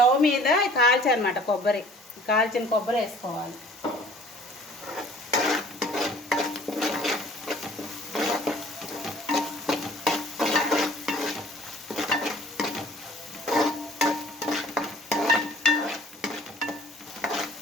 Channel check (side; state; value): both; normal; correlation 0.52